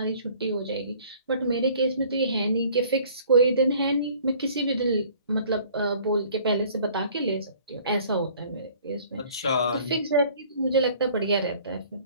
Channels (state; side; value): inverted; both; correlation -0.53